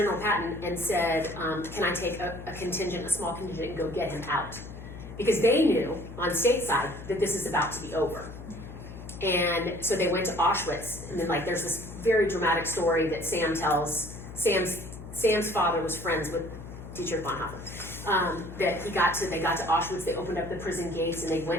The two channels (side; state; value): left; noise; hum, 12 dB below the sound